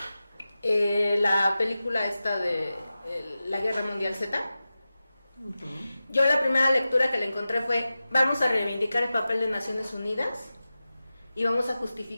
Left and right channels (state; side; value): inverted; both; correlation -0.94